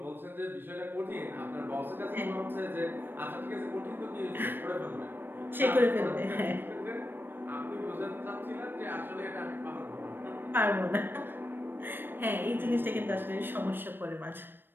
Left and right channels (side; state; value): left; late; 0.096 ms